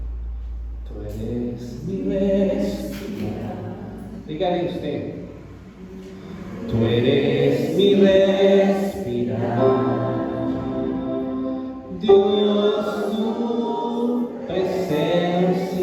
Tú eres mi respirar. Dígale usted. Tú eres mi respirar. Dios, tu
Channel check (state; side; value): identical; both; correlation 1.00